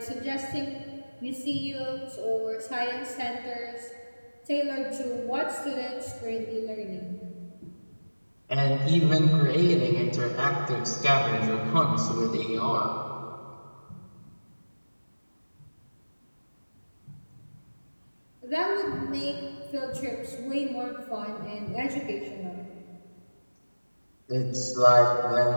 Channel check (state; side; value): inverted; both; correlation -1.00